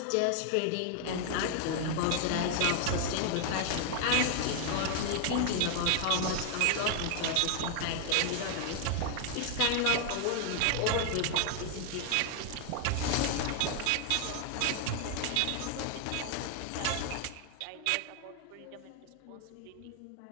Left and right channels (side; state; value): both; different; correlation 0.00